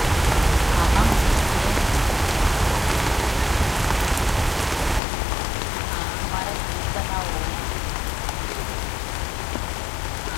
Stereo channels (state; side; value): drops out; right; at 5.0 s